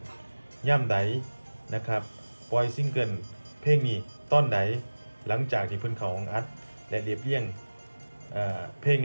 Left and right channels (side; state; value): both; inverted; correlation -1.00